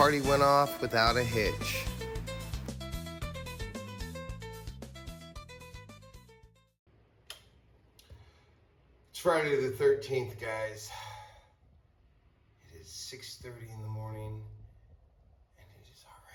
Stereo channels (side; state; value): both; identical; correlation 1.00